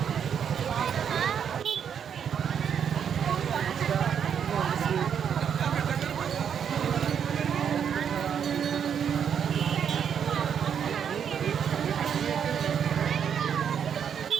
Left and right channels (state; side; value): quieter; left; 8.0 dB